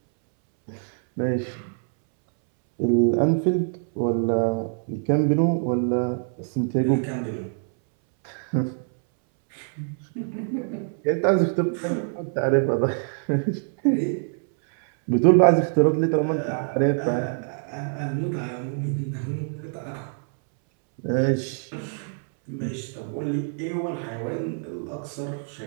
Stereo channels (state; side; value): silent; left; 62 dB below the other